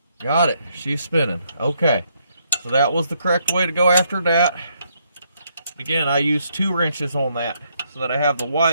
Got it. She's spinning. Okay. So that was the correct way to go after that. Again, I used 2 wrenches on that so that I have the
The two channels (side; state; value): both; inverted; correlation -0.74